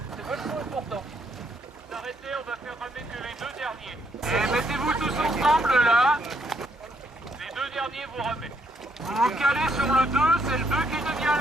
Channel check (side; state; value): both; normal; correlation 0.73